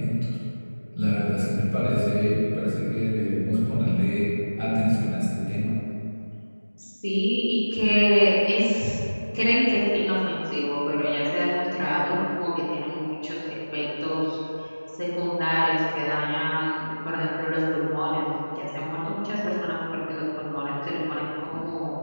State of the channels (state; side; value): inverted; both; correlation -1.00